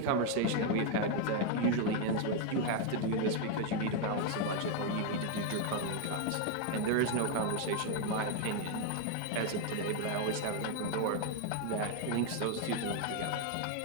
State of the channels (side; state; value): both; different; correlation 0.01